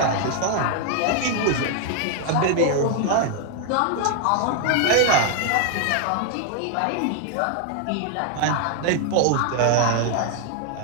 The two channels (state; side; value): different; both; correlation 0.00